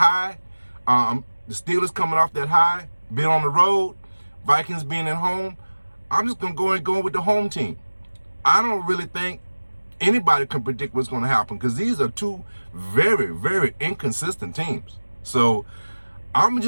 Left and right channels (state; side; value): inverted; both; correlation -1.00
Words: the Steelers coming off that high, being on the road, Vikings being at home, I'm just going to go with the home team. I don't really think anybody can predict what's going to happen because these are two very, very inconsistent teams. So I'm